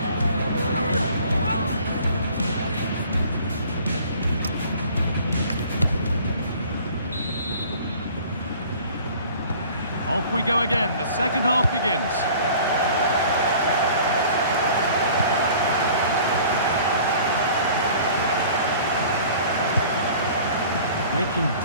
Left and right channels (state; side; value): inverted; both; correlation -0.48